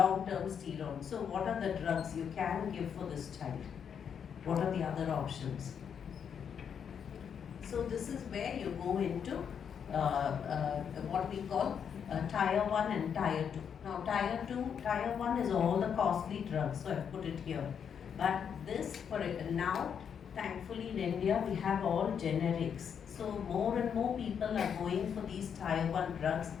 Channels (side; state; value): right; quieter; 7.6 dB